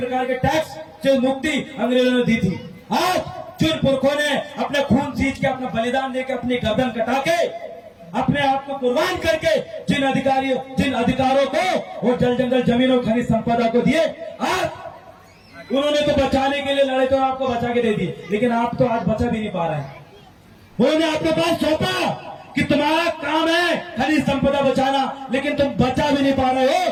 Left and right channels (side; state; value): both; identical; correlation 1.00